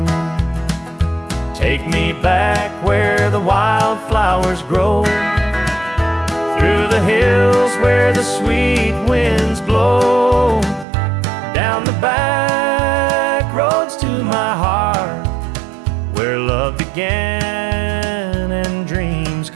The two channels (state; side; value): drops out; left; at 10.9 s